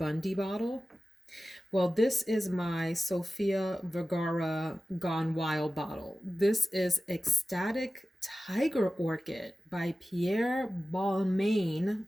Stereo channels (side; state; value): both; normal; correlation 0.95